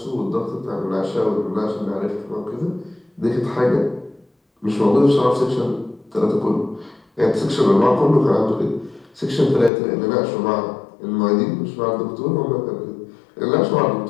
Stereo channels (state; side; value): drops out; right; at 9.7 s